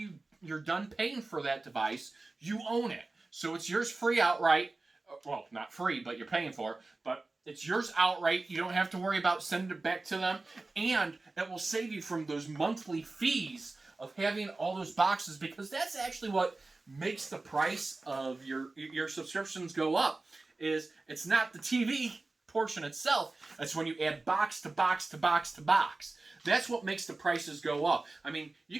done paying for that device, you own it. So it's yours free outright. Well, not free, but you're paying for it. But it's yours outright. You don't have to worry about sending it back to them. And it will save you from those monthly fees of having all those boxes, because that's actually what makes the price of your subscriptions go up, is it's not the TV portion itself. It's when you add box to box to box to box. That's what makes the prices go up. I mean, you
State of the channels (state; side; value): quieter; left; 3.3 dB